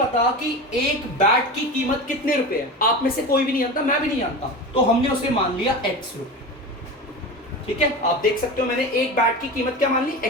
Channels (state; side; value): normal; both; correlation 0.28